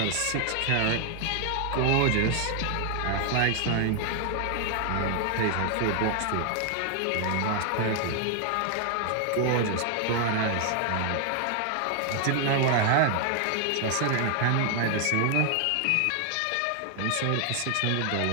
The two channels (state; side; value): different; both; correlation 0.00